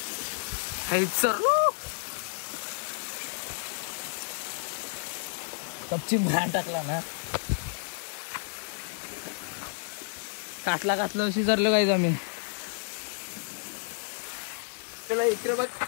कपची भान टाकला ना. काटला अशी धरलं काय आम्ही. त्याला इकडे बघ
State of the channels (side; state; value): right; silent; digital silence